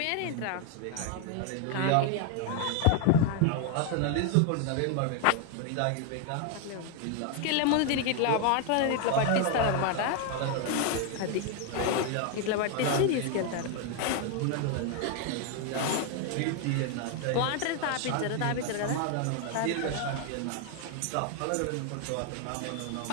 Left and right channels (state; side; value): different; both; correlation 0.01